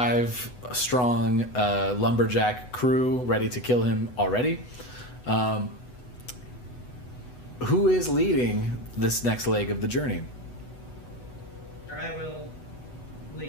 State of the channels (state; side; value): late; right; 8.1 ms